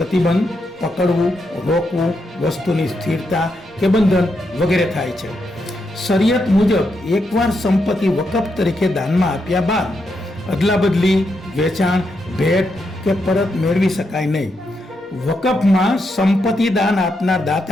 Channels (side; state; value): both; normal; correlation 0.82